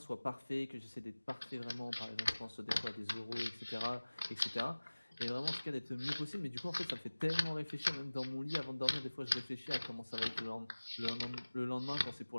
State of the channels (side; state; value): both; inverted; correlation -1.00